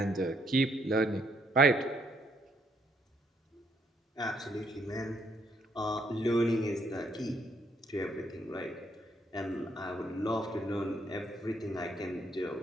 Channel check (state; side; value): normal; both; correlation 0.72